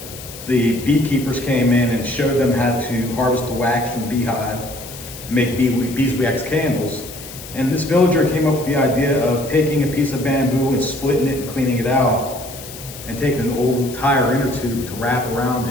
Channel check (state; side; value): noise; left; hiss, 14 dB below the sound